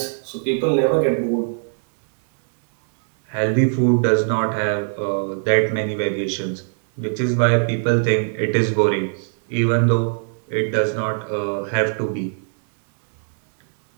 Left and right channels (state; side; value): silent; left; 65 dB below the other